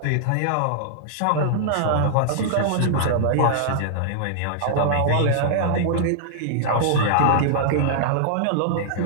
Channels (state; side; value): different; both; correlation -0.01